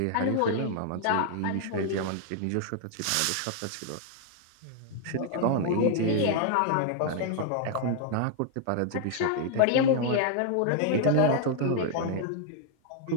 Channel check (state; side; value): different; both; correlation 0.00